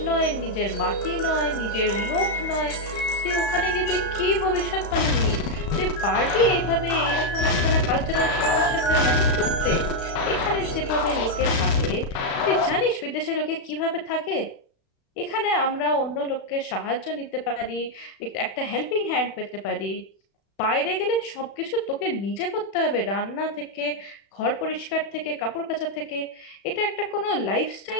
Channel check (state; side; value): late; right; 34 ms